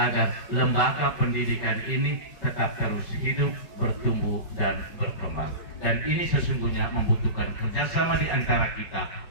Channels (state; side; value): late; right; 5.4 ms